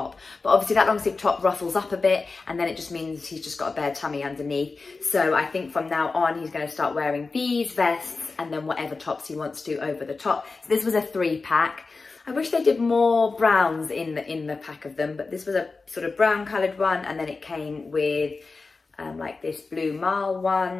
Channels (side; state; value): right; quieter; 4.0 dB